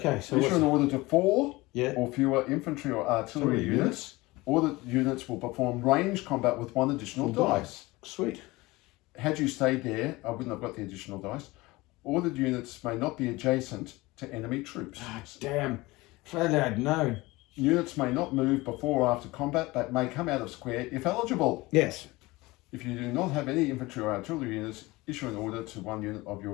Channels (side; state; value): right; quieter; 21.3 dB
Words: So Issue an order to 4 Yeah. or fewer infantry or artillery Artillery units. All the units will perform range combat with 1 additional dice. Sweet. Had you stayed there, I wouldn't have got the additional dice. Ordered units may not be adjacent to enemy troops. Ah, damn. If only I'd known. Units may not move before or after combat, but may come out of square if eligible. Yes. If you do not have any infantry or artillery units, issue an order to 1 unit of your